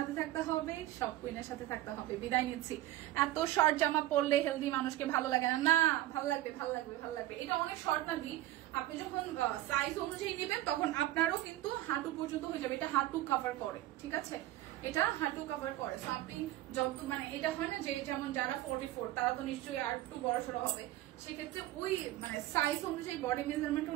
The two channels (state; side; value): quieter; left; 15.1 dB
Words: থাকতে হবে, সব কুইনের সাথে থাকতে হবে। বিদায় নিচ্ছি। এত শর্ট জামা পরলে হেলদি মানুষকে ভালো লাগে না। না, ভালো লাগবে, ভালো লাগবে, ভালো লাগবে। এটা অনেক শর্ট না দি, আপনি যখন সাইজ অনুযায়ী নেবেন তখন আপনারও কিন্তু হাঁটু পর্যন্ত হয়ে যাবে। এটা হাঁটু কভার করে, ঠিক আছে, এটা হাঁটু কভার করে। সো আপনি যত মানে এটা হয় না যে যেমন যারা 44 তারা তো নিশ্চয়ই আর একটু বড় সড়ো হবে, সেক্ষেত্রে ওই মানে সাইজ অনুযায়ী, বডি মেজারমেন্ট